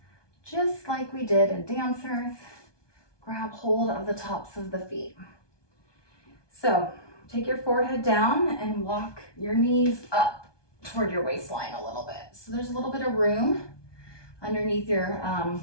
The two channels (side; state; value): right; late; 1.2 ms